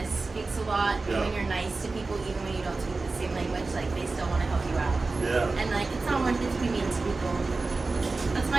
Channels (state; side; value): quieter; left; 3.7 dB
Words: speaks a lot. Yeah. And when you're nice to people, even when you don't speak the same language, like they still want to help you out. Yeah. And like, it's not worth it to be mean to people. That's